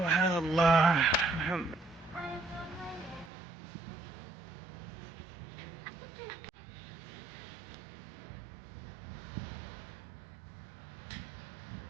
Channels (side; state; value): left; drops out; at 3.3 s